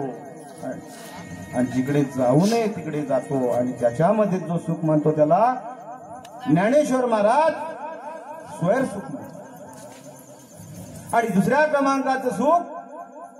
आणि जिकडे जाऊ नये तिकडे जातो आणि त्याच्यामध्ये जो सुख मानतो त्याला ज्ञानेश्वर महाराज स्वर सुख म्हणतात. आणि दुसऱ्या क्रमांकाचं सुख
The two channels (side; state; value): both; identical; correlation 1.00